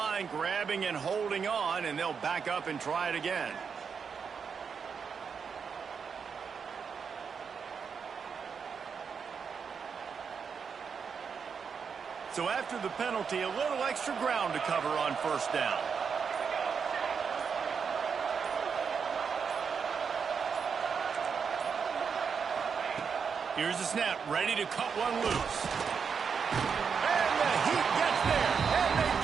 grabbing and holding on, and they'll back up and try it again. So after the penalty, a little extra ground to cover on first down. Here's the snap, ready to cut one loose. And the Heat gets there, and they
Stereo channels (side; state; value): left; quieter; 6.2 dB